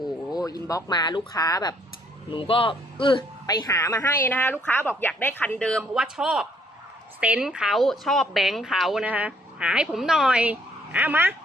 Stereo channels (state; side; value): normal; both; correlation 0.66